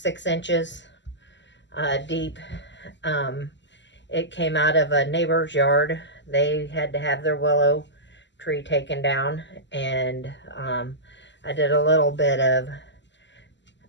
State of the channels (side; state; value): right; late; 0.53 ms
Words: inches deep. It came out of a neighbor's yard. They had to have their willow tree taken down, and I did a little bit of